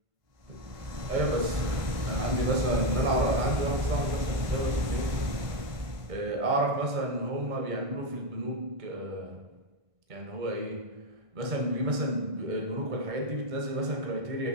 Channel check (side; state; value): left; late; 1.5 ms